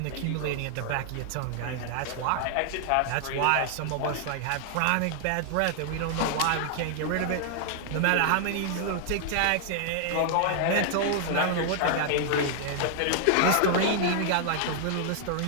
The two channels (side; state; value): both; different; correlation -0.01